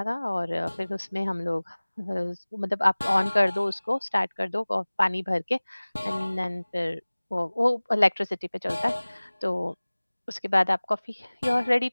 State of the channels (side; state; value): both; inverted; correlation -1.00